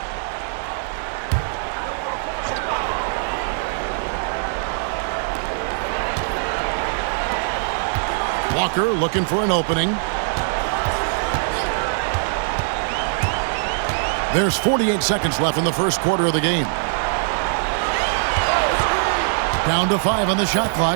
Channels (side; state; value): left; silent; digital silence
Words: Walker looking for an opening. There's 48 seconds left in the first quarter of the game. Down to 5 on the shot